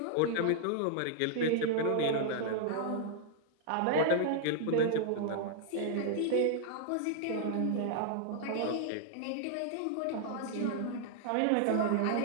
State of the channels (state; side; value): different; both; correlation -0.01